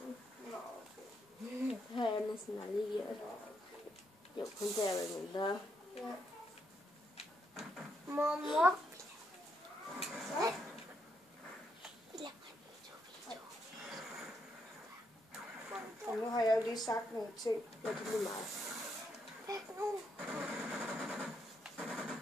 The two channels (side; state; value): both; normal; correlation 0.78